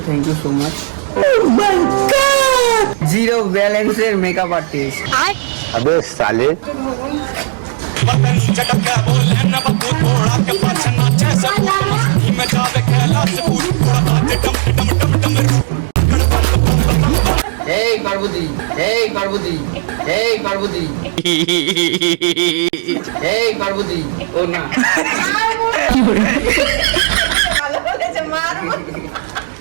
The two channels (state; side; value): silent; left; 70 dB below the other